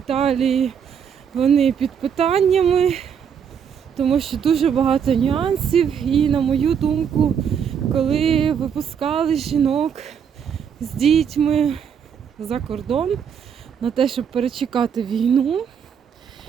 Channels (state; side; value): quieter; left; 7.6 dB